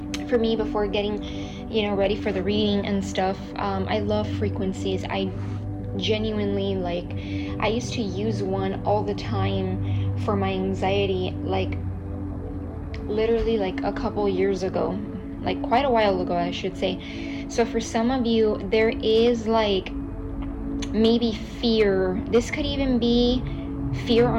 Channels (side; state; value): both; identical; correlation 1.00